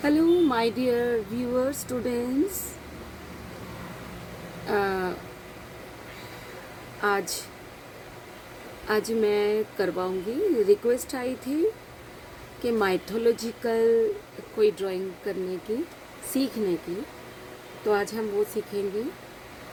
my dear viewers, students. आज आज मैं करवाऊंगी। रिक्वेस्ट आई थी कि माइथोलॉजिकल कोई ड्राइंग करने की, सीखने की, तो आज हम वो सीखेंगे।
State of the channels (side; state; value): both; identical; correlation 1.00